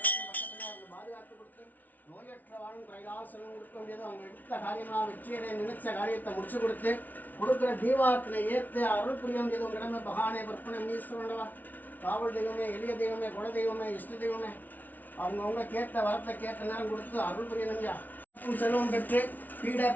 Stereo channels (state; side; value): late; right; 0.080 ms